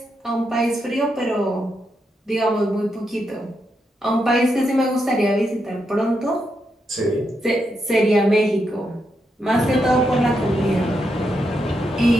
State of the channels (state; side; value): normal; both; correlation 0.82